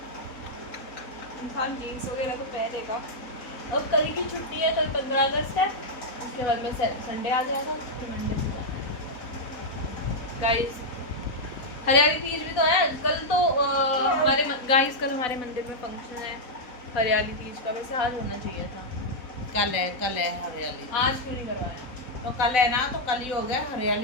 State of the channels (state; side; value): late; right; 4.0 ms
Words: इंसान जीन्स वगैरह तो पहनेगा। अब कल की छुट्टी है, कल 15 अगस्त है, उसके बाद में संडे आ जाएगा, फिर मंडे से जाना है। गाइस हरियाली तीज भी तो है कल, तो हमारे गाइस कल हमारे मंदिर में फंक्शन है हरियाली तीज का। वैसे आज होना चाहिए था, कल है हरियाली। आज क्यों नहीं करवाया? तो कल है ना, तो कल ही हो गया,